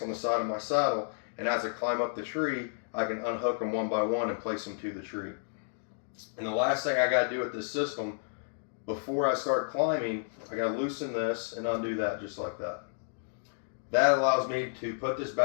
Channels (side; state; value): right; silent; digital silence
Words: on the side of my saddle, and as I climb up the tree, I can unhook them one by one and place them to the tree. And the last thing I got to do with this system, before I start climbing, I got to loosen this and undo that just like that. That allows me to put this